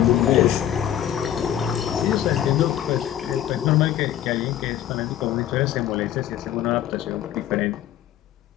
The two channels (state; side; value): quieter; right; 11.3 dB